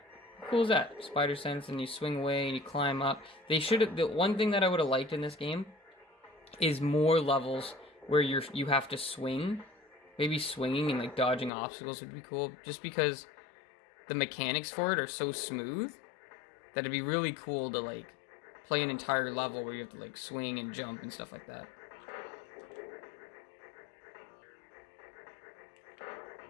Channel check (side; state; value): right; drops out; at 11.5 s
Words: How cool is that? Spider sense, and you swing away and you climb up. They should have. The one thing that I would have liked in this game is more levels where you have to swing. Maybe swinging and like dodging obstacles would be cool. Just because the mechanics for it are so smooth. That it'd be really cool to like play an entire level where you have to like swing and jump and stuff like that.